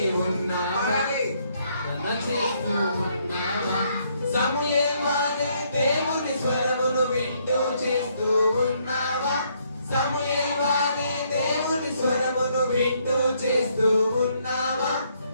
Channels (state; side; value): inverted; both; correlation -0.71